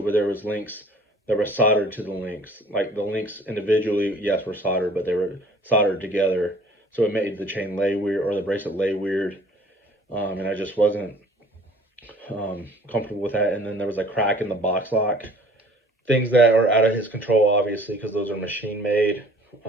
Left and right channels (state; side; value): normal; both; correlation 0.51